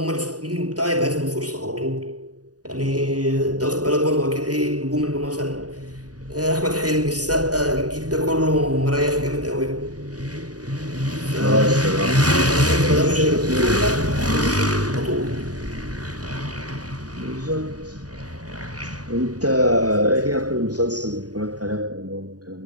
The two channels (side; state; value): left; late; 0.68 ms